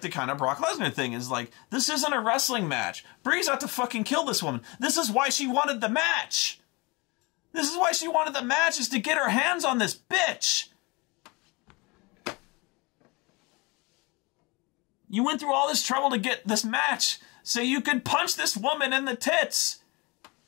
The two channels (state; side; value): quieter; right; 26.5 dB